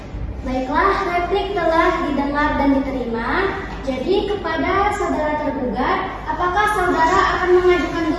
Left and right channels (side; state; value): both; identical; correlation 1.00